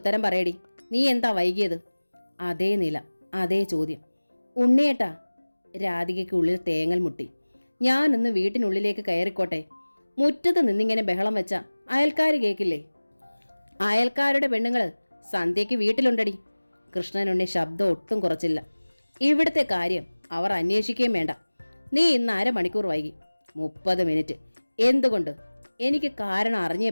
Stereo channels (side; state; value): both; inverted; correlation -1.00